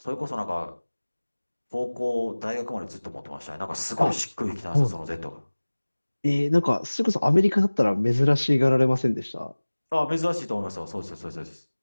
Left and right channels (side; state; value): both; inverted; correlation -1.00